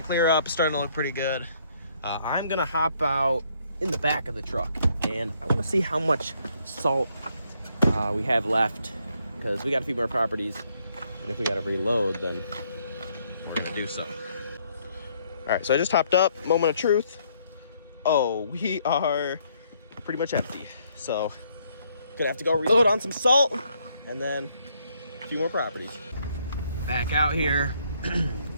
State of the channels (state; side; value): inverted; both; correlation -0.69